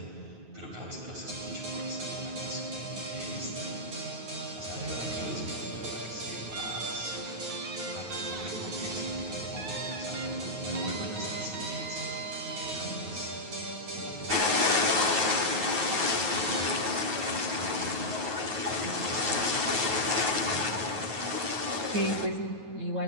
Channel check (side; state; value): left; late; 9.3 ms